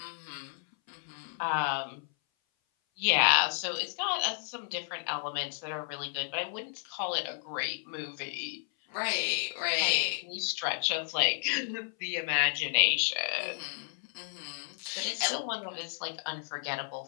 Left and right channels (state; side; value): silent; right; 56 dB below the other